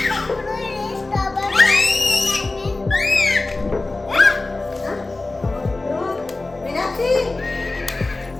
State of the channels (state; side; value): quieter; right; 3.2 dB